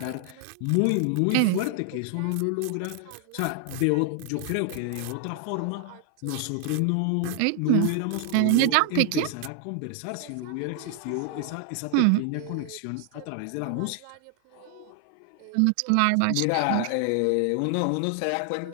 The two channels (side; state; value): both; different; correlation 0.00